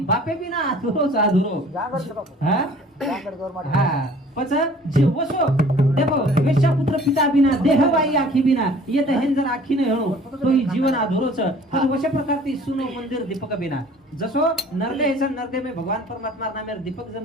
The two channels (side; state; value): both; normal; correlation 0.51